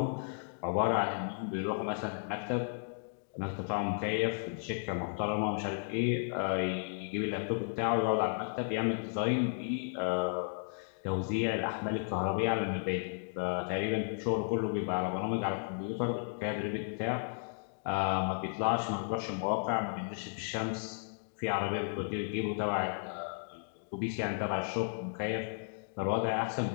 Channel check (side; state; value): right; silent; digital silence